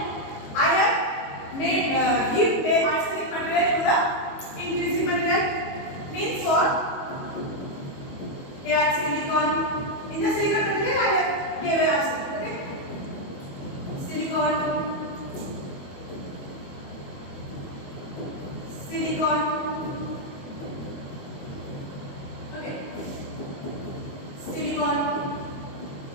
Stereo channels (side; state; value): right; late; 22 ms